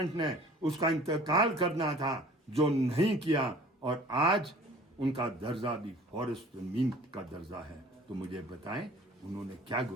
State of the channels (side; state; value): both; normal; correlation 0.49